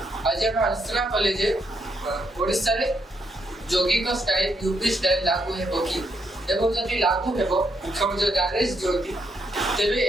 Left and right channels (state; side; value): normal; both; correlation 0.77